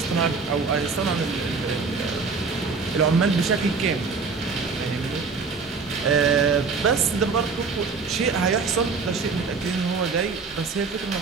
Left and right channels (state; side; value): quieter; left; 4.7 dB